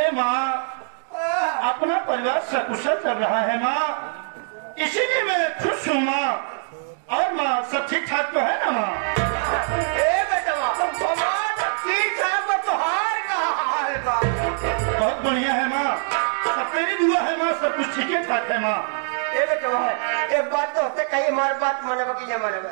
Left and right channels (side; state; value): left; silent; 63 dB below the other